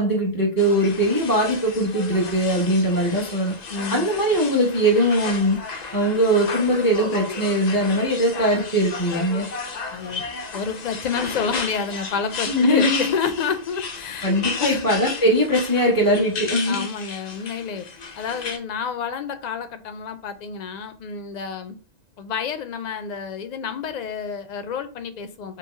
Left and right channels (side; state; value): right; late; 1.9 ms